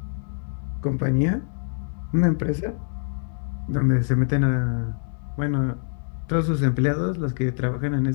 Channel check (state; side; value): silent; right; digital silence